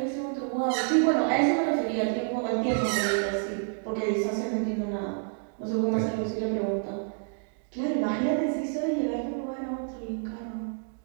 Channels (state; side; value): silent; left; digital silence